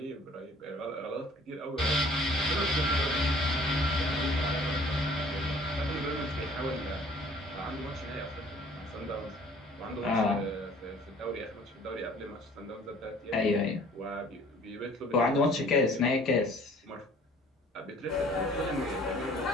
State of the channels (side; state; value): both; normal; correlation 0.53